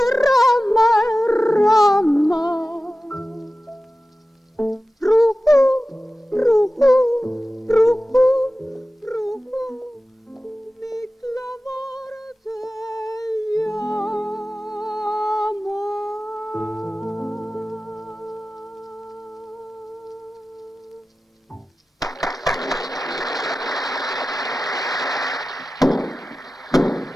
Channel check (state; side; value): normal; both; correlation 0.95